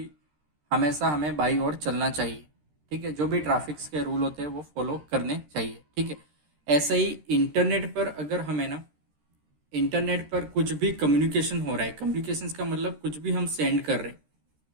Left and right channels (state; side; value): late; left; 13 ms